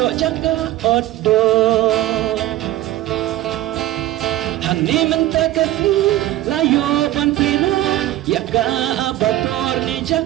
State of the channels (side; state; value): left; quieter; 15.0 dB